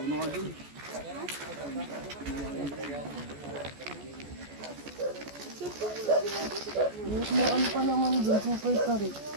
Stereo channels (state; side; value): late; left; 14 ms